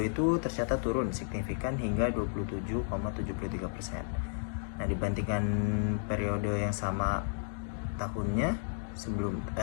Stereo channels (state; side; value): silent; right; digital silence